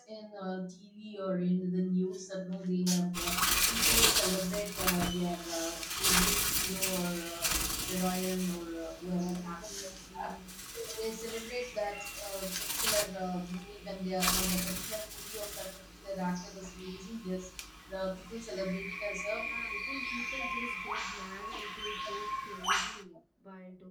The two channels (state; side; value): identical; both; correlation 1.00